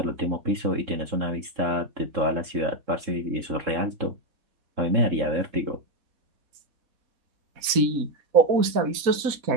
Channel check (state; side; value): late; left; 4.1 ms